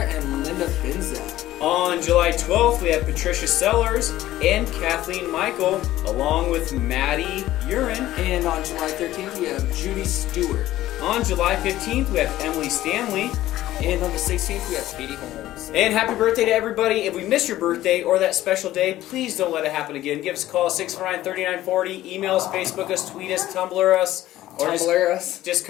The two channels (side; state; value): right; quieter; 14.7 dB